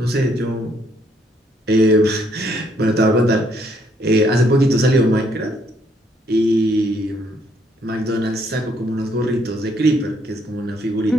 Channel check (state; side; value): normal; both; correlation 0.69